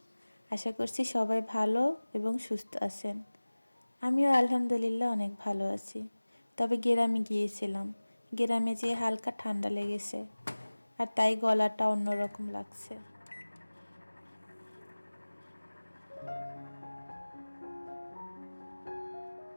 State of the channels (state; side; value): inverted; both; correlation -1.00